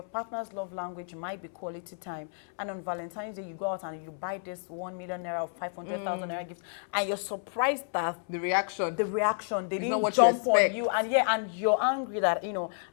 partner's love language might be quality time. And on Valentine's Day, you go out and you buy this 1 million naira or 500,000 naira gift. And you're surprised that the reaction, they didn't jump on you. And and you're angry that, you know,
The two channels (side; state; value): right; silent; 58 dB below the other